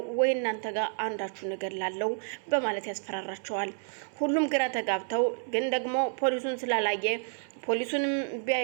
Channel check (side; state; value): left; silent; 58 dB below the other